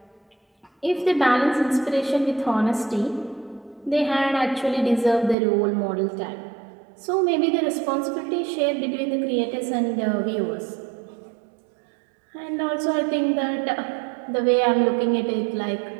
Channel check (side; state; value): left; drops out; at 5.4 s